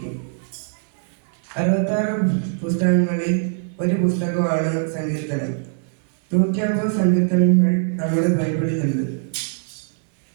66 പുസ്തകങ്ങളിൽ ഒരു പുസ്തകമാണ് സങ്കീർത്തനം. 150 സങ്കീർത്തനങ്ങൾ നമ്മുടെ ബൈബിളിലുണ്ട്.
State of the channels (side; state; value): left; silent; 63 dB below the other